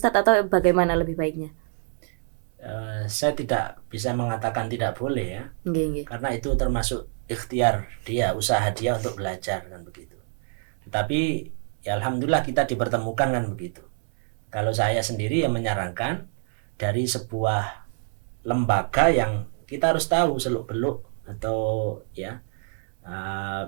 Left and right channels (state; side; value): silent; left; 61 dB below the other